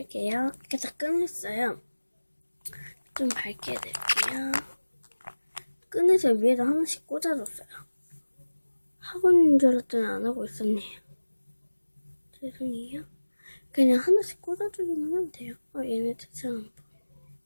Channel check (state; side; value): inverted; both; correlation -1.00